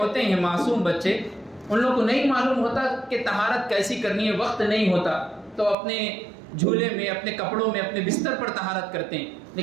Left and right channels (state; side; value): drops out; left; at 5.8 s